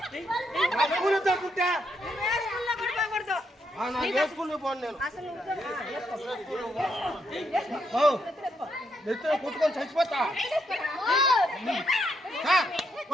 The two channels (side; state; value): both; normal; correlation 0.78